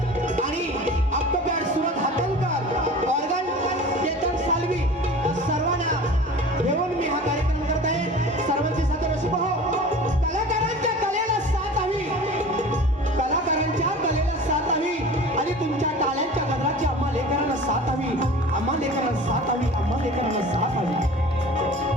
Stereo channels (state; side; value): normal; both; correlation 0.39